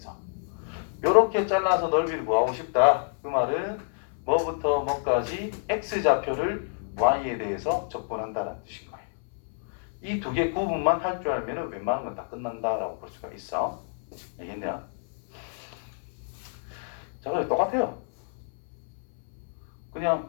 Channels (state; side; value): silent; right; 59 dB below the other